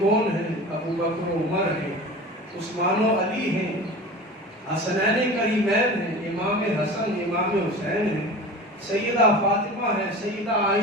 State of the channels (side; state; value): both; normal; correlation 0.35